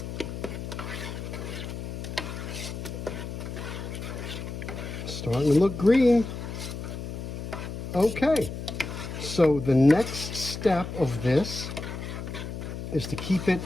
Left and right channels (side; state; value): left; noise; hum, 7 dB below the sound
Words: Starting to look green. Okay, so the next step of this is to keep it